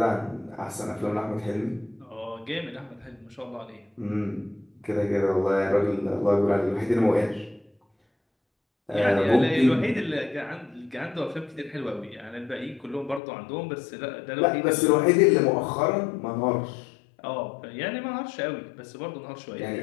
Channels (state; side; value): drops out; right; at 13.2 s